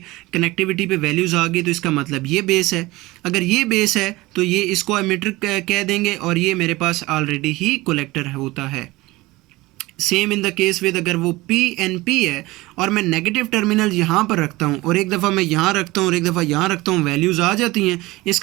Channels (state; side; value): quieter; left; 20.3 dB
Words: कनेक्टिविटी पे वैल्यूज़ आ गई, तो इसका मतलब ये बेस है। अगर ये बेस है तो ये इसको एमिटर कह देंगे और ये मेरे पास ऑलरेडी ही कलेक्टर होता है। Same in the case with अगर वो पीएनपी है और मैं नेगेटिव टर्मिनल यहाँ पर रखता हूँ और एक दफ़ा मैं यहाँ रखता हूँ और एक दफ़ा यहाँ रखता हूँ, वैल्यूज़ आ जाती हैं,